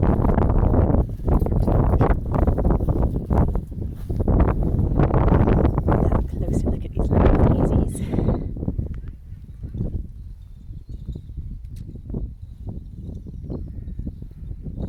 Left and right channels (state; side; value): identical; both; correlation 1.00